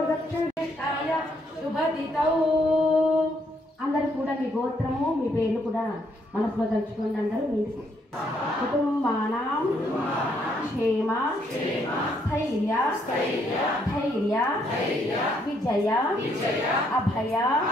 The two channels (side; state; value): both; normal; correlation 0.72